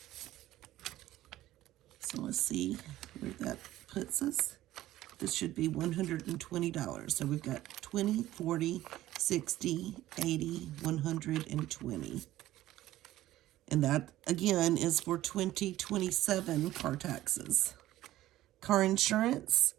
So let's see where that puts us. This should be $120. So we've got 20, 40, 60, 80, 120. And that, again, is for 2027 car taxes. Car insurance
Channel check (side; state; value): left; quieter; 14.8 dB